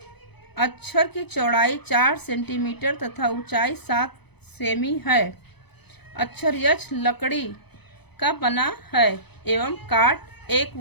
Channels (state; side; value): late; right; 0.98 ms